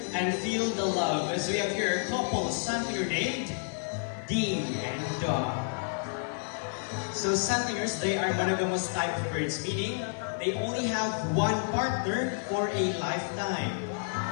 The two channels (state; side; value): silent; right; 57 dB below the other